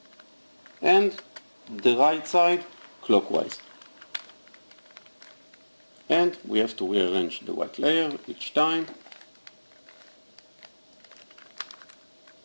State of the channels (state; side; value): inverted; both; correlation -1.00